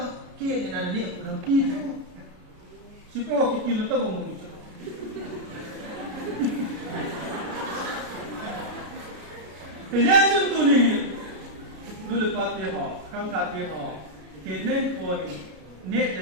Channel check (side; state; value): left; late; 33 ms